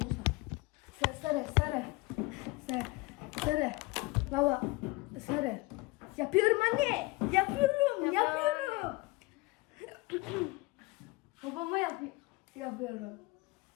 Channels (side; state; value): right; quieter; 22.4 dB